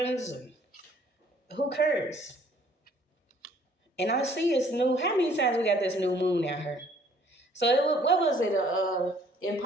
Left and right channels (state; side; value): normal; both; correlation 0.59